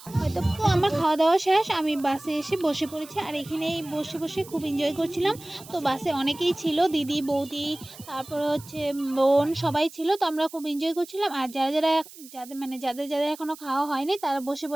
হয়তো। তো আমার খাওয়া দাওয়া শেষ, আমি বাসে এসে বসে পড়েছি, আর এখানেই বসে বসে খুব এনজয় করছিলাম। তো বাসে অনেকেই ছিল, দিদি, বৌদি, তারপরে হচ্ছে বোন, সবাই ছিল। তো আমরা খুব এনজয় করছিলাম। আর যাদের এখনও খাওয়া হয়নি তারা বসে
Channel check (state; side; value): noise; right; hiss, 18 dB below the sound